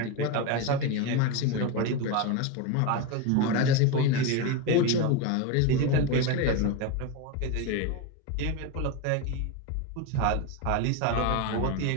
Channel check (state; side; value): different; both; correlation 0.04